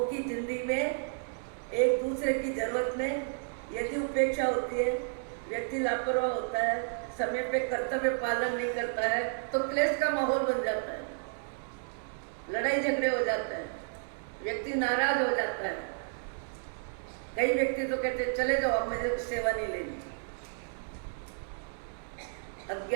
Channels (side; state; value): left; silent; digital silence